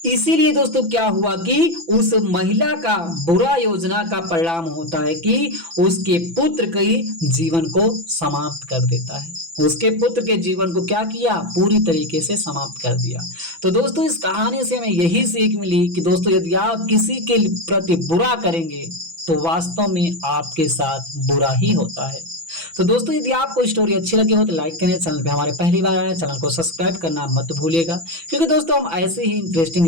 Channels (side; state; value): left; late; 6.0 ms